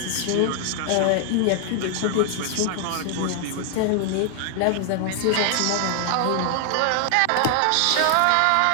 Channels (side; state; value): both; different; correlation 0.00